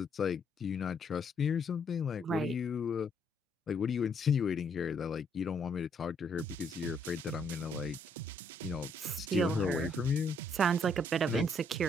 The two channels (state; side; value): normal; both; correlation 0.70